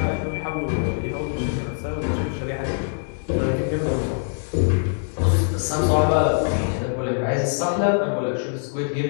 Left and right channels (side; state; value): right; silent; digital silence